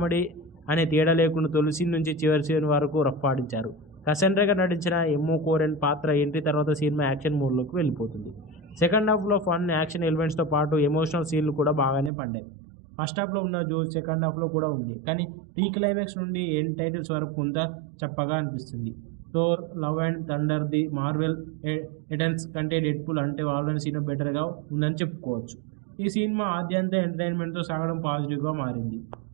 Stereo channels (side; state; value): left; drops out; at 12.1 s